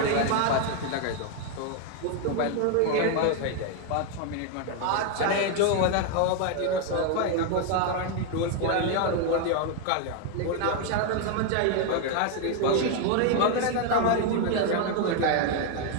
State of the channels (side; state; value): both; different; correlation 0.00